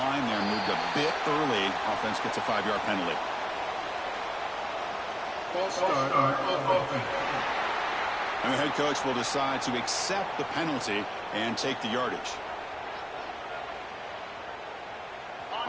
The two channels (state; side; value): identical; both; correlation 1.00